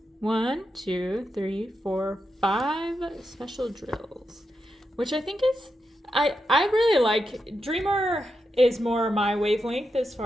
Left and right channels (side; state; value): both; normal; correlation 0.86